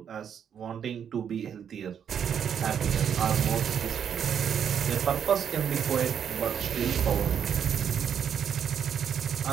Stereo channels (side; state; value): left; quieter; 8.2 dB